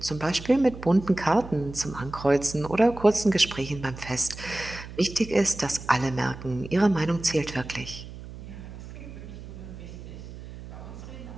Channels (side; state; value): right; noise; hum, 13 dB below the sound